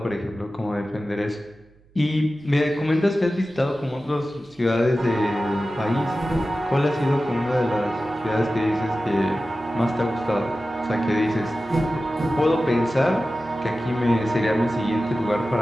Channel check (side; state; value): right; noise; hum, 30 dB below the sound